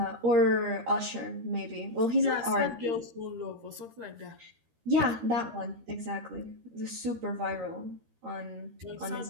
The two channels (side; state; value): left; late; 13 ms